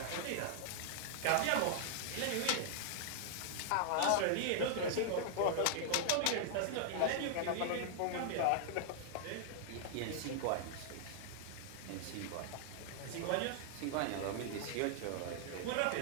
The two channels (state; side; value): different; both; correlation -0.01